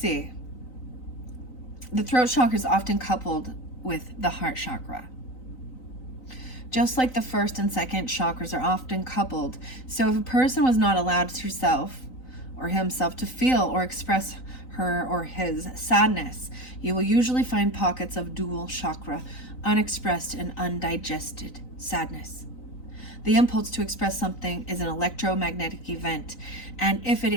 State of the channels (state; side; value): late; right; 3.9 ms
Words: The throat chakra is often coupled with the heart chakra. Just like the first and second chakras are often coupled. So if a person was not allowed herself or himself to feel or express her or his sadness, you will usually find pockets of dual chakra, unexpressed and undigested sadness. The impulse to express something is an electromagnetic event, and if it